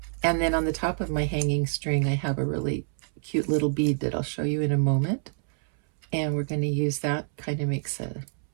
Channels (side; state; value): left; silent; 60 dB below the other